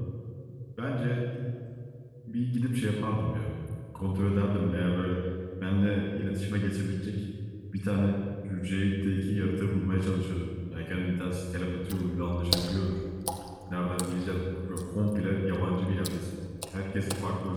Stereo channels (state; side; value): identical; both; correlation 1.00